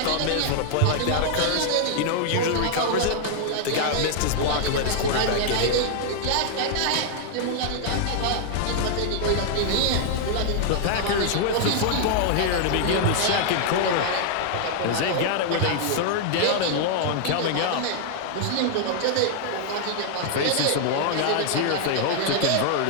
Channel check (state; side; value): different; both; correlation 0.00